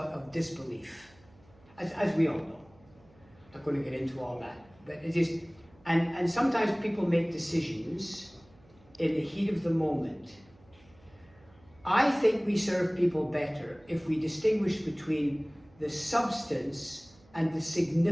disbelief, as we all know. I'm not going to get into all that, but it just, and sometimes people make decisions in the heat of the moment. I think we serve people better if we distinguish between the substance and the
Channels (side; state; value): right; noise; hum, 28 dB below the sound